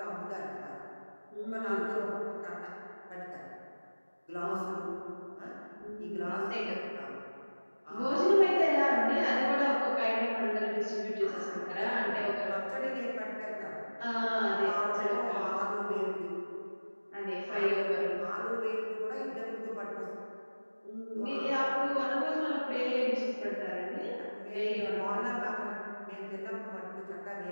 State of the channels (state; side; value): inverted; both; correlation -1.00